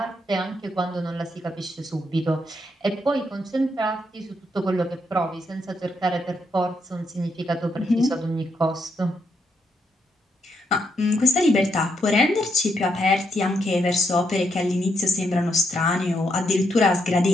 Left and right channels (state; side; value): normal; both; correlation 0.78